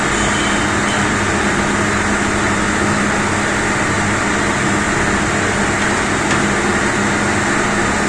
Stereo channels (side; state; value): both; identical; correlation 1.00